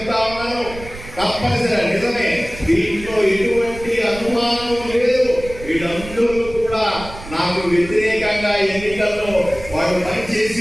ఉన్నాను, తప్పనిసరి నిజమే, దీంట్లో ఎటువంటి అనుమానం లేదు. వీళ్ళందరూ కూడా నాకు వ్యతిరేకంగా ఎన్నికల్లో వాళ్ళు పనిచేసి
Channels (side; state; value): right; noise; rumble, 14 dB below the sound